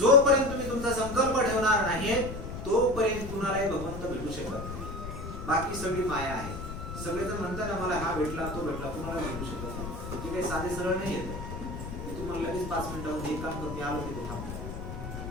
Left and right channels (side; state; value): left; noise; rumble, 8 dB below the sound